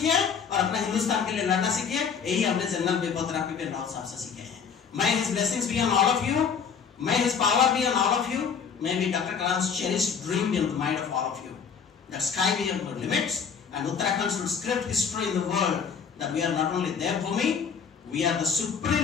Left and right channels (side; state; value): right; quieter; 6.6 dB